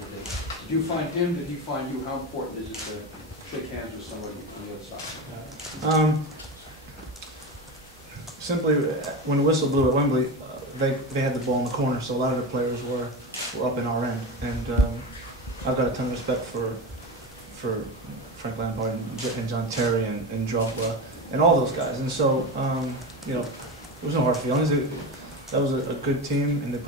day. Did you find him, did he find you? How important is it to shake hands with somebody on the other side? Simply, when the whistle blew at Wembley, they had the ball in the corner, so a lot of the players were up in our end. And I've got a ton of respect for Frank Lampard and John Terry and Drogba and all those guys. And so, you know, there was no hard feelings. That was a good team, and they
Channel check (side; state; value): both; normal; correlation 0.22